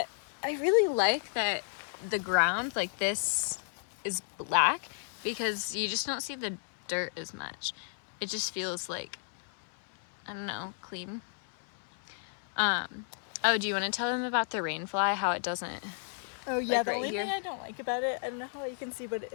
I really like that the ground like this is black, because you just don't see the dirt as much. It just feels like, I don't know, clean. Oh, do you want to tell them about the rainfly, how it doesn't? Oh yeah, like the right only here? thing I don't like about it, I don't know how you can see, but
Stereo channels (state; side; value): silent; right; 56 dB below the other